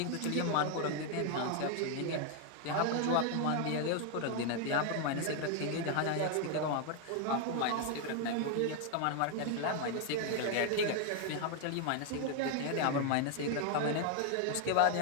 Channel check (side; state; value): both; different; correlation 0.00